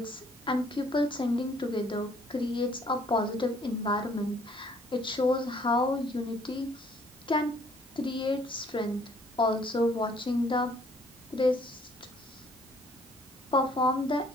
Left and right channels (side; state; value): both; normal; correlation 0.61